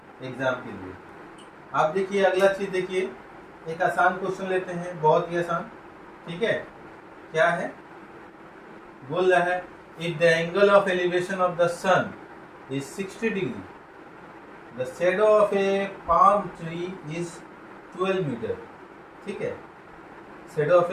एग्जाम के लिए। आप देखिए, अगला चीज देखिए, एक आसान क्वेश्चन लेते हैं, बहुत ही आसान। ठीक है, क्या है, बोल रहा है if the angle of elevation of the sun is 60 degree, the shadow of a palm tree is 12 metre. ठीक है, shadow of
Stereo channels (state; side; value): identical; both; correlation 1.00